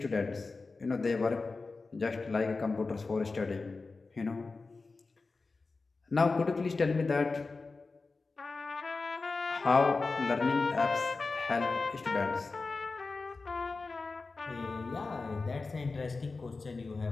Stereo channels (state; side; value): quieter; right; 3.9 dB